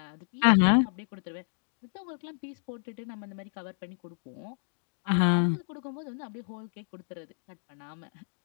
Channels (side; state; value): right; silent; digital silence